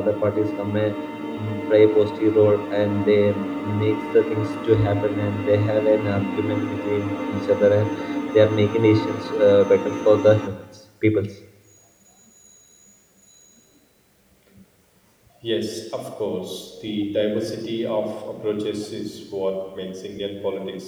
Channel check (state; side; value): identical; both; correlation 1.00